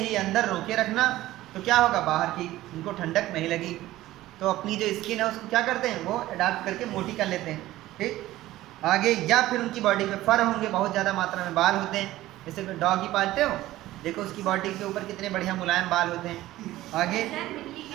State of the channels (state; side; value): quieter; left; 15.9 dB